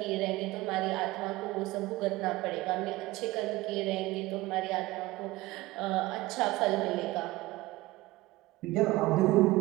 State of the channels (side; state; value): left; quieter; 19.0 dB